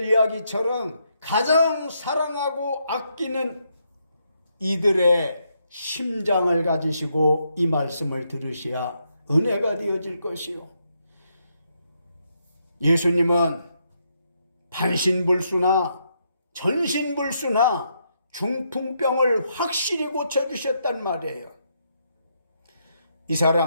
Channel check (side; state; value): both; inverted; correlation -0.78